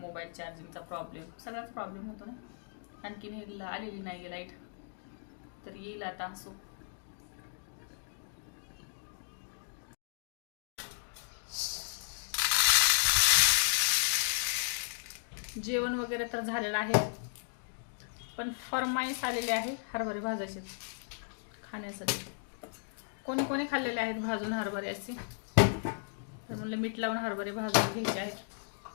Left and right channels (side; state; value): right; silent; digital silence